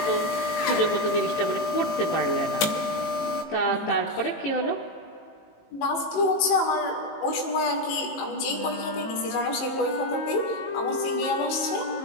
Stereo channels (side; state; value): right; late; 18 ms